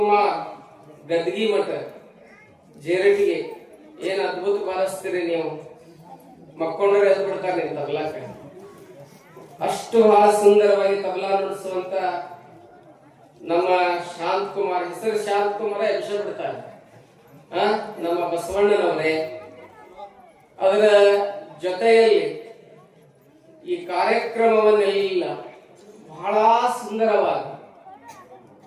ಗದ್ಗಿ ಮಠ ಜೇರಟಿಗೆ. ಏನ್ ಅದ್ಭುತ ಬಾರಿಸ್ತೀರಿ ನೀವು, ಮಕ್ಕೊಂಡ್ರೆ ಎದ್ದು ಬಿಡ್ತಾರೆ ನೀವು ತಬಲಾಕ. ಅಷ್ಟು ಬಹಳ ಸುಂದರವಾಗಿ ತಬಲಾ ನುಡಿಸುವಂತ ನಮ್ಮ ಶಾಂತಕುಮಾರ್, ಹೆಸರು ಶಾಂತಕುಮಾರ ಎಬ್ಸ ಬಿಡ್ತಾರೆ. ನಮ್ಮ ಬಸವಣ್ಣನವರೇ. ಅದರ ಜೊತೆಯಲ್ಲಿ ಈ ಕಾರ್ಯಕ್ರಮವನ್ನೆಲ್ಲ ಬಹಳ ಸುಂದರವಾಗಿ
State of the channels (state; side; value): identical; both; correlation 1.00